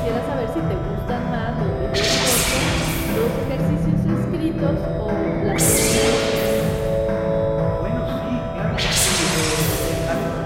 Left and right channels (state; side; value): identical; both; correlation 1.00